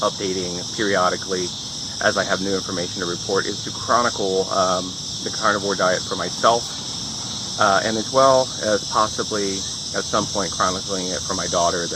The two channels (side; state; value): both; identical; correlation 1.00